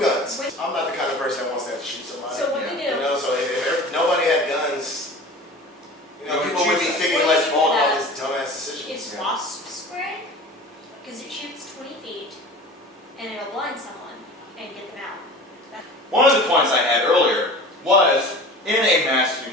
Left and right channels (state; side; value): normal; both; correlation 0.38